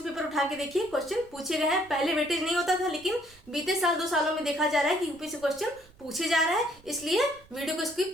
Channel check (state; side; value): noise; right; rumble, 27 dB below the sound